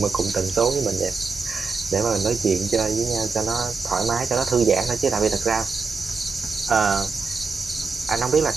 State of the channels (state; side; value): quieter; left; 4.7 dB